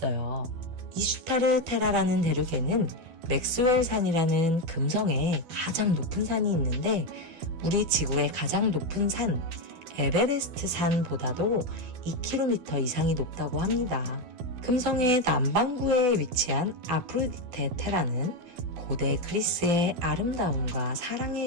이슈타르 테라라는 대륙에는 맥스웰 산이라는 금성의 가장 높은 산이 있는데 우리 지구의 가장 높은 산 에베레스트 산보다도 2km 이상이 높다고 합니다. 금성의 남반구에 위치한 아프로디테 테라는 고대 그리스의 아름다움과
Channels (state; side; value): late; left; 12 ms